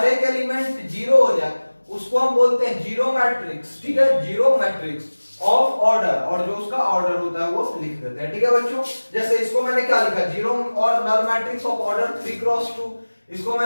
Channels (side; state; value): both; inverted; correlation -1.00